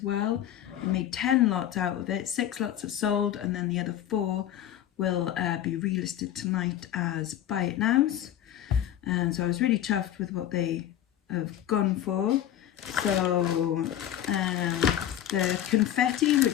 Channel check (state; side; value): quieter; right; 11.5 dB